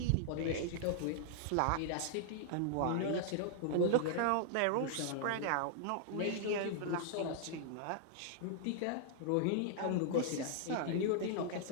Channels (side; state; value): both; different; correlation -0.01